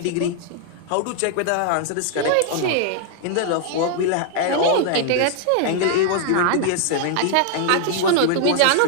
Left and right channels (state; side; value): different; both; correlation 0.00